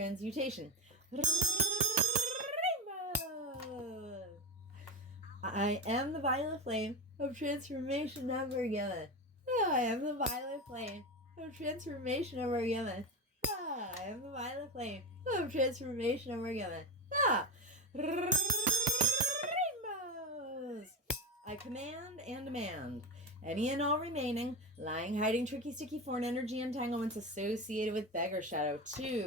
I am the violet flame of transformation never given. I am the violet flame of transformation never given. I am the violet flame of transformation never given. Rainbows! I command and demand any and all remaining lying, hiding, tricky, sticky, foreign energy entanglements associated with beggar shadow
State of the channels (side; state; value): both; normal; correlation 0.19